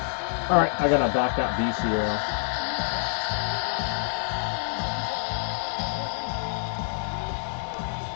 Alright, I gotta back up BC rail.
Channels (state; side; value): silent; right; 58 dB below the other